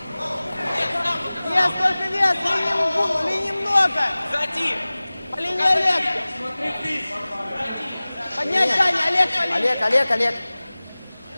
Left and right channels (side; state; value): both; inverted; correlation -0.99